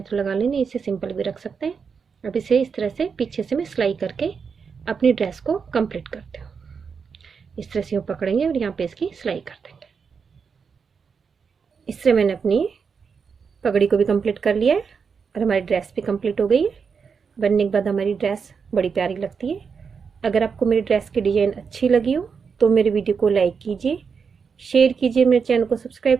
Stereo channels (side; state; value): left; quieter; 5.9 dB